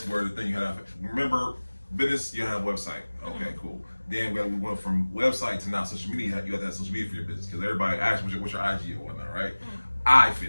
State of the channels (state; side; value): inverted; both; correlation -1.00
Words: were the thing you had. Remember business, you have a website. Okay, cool. then we went from website to now social media. You have to have social media for your business because everybody asks what's your IG or whatnot, right? I